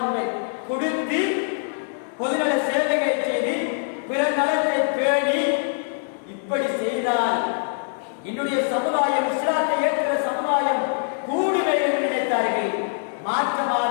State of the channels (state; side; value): silent; right; digital silence